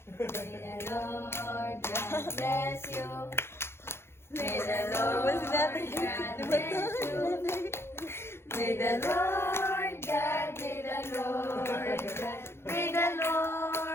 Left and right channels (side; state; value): right; late; 0.12 ms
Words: May the Lord God bless you. May the Lord God bless you. May the Lord God, may the Lord God, may the